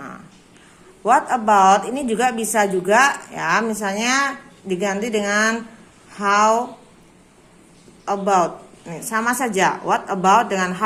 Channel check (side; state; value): both; identical; correlation 1.00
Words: What about ini juga bisa juga ya, misalnya diganti dengan how about. Nih, sama saja. What about dengan